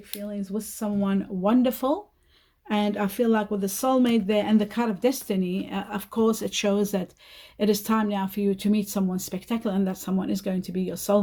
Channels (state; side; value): identical; both; correlation 1.00